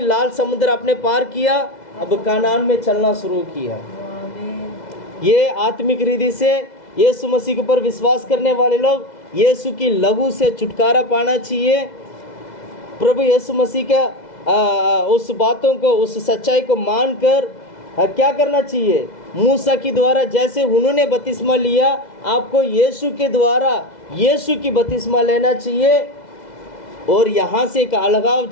लाल समुद्र आपने पार किया, अब कनान में चलना शुरू किया। ये आत्मिक रीति से यीशु मसीह के ऊपर विश्वास करने वाले लोग यीशु की लहू से छुटकारा पाना चाहिए। प्रभु यीशु मसीह का उस बातों को, उस सच्चाई को मानकर क्या करना चाहिए? मूसा के द्वारा जैसे उन्होंने बपतिस्मा लिया, आपको यीशु के द्वारा यीशु की बपतिस्मा लेना चाहिए, और यहाँ से एक अलगाव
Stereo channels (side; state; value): right; late; 2.0 ms